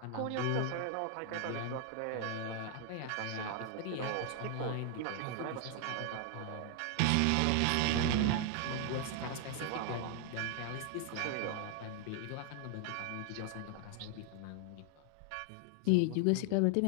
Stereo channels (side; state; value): both; different; correlation 0.00